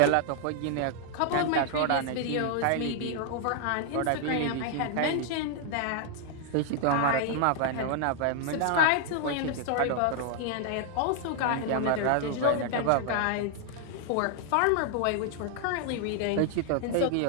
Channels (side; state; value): both; different; correlation 0.00